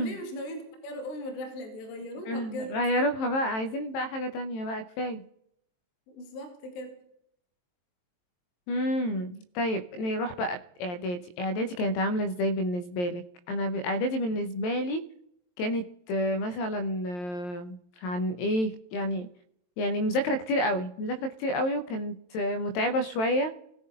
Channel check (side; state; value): right; late; 23 ms